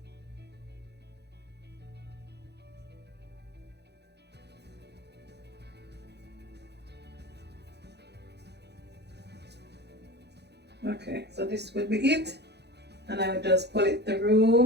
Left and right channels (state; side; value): late; left; 0.49 ms